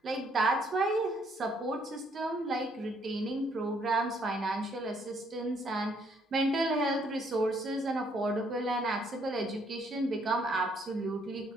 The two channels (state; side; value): normal; both; correlation 0.68